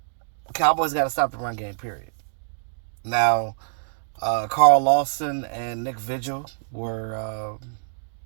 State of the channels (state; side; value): silent; left; digital silence